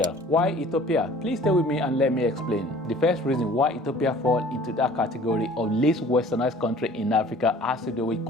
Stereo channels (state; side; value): normal; both; correlation 0.50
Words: Why Ethiopia? Please stay with me and let me explain. The first reason why Ethiopia falls into that category of least westernized country in Africa has to do with